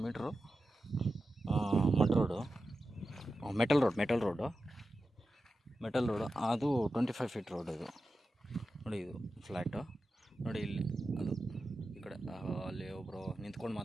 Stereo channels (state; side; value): normal; both; correlation 0.92